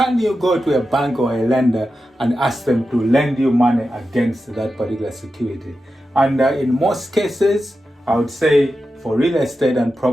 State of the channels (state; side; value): normal; both; correlation 0.91